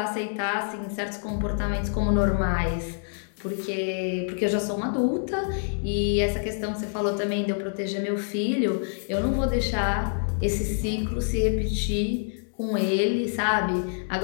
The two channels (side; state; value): right; silent; digital silence